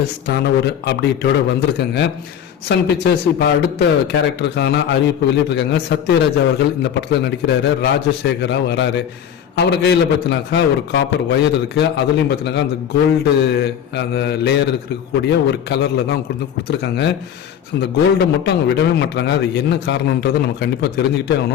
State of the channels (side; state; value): right; quieter; 9.1 dB